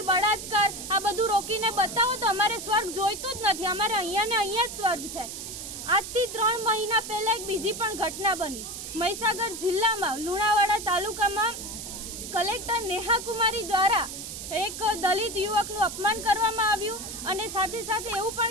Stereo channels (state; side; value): noise; right; hiss, 8 dB below the sound